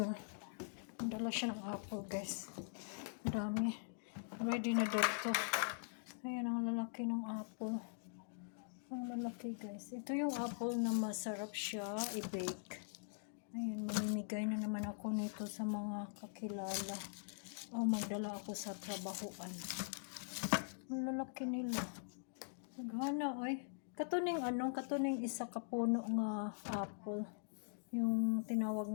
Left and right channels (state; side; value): silent; right; digital silence